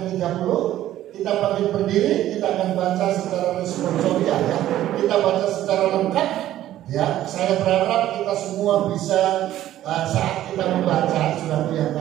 Kita bagi berdiri, kita akan baca secara responsorial ya. Kita baca secara lengkap ya. Saya berharap kita semua bisa saat kita membaca sudah yang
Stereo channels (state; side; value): quieter; left; 13.2 dB